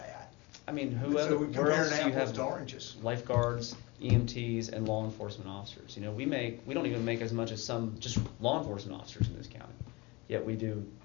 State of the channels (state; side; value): quieter; right; 24.8 dB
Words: I mean, So whoever, we're where else do comparing you apples have to oranges. lifeguards, EMTs, and law enforcement officers? We don't even make as much as some just law enforcement officers in this county. Yet we do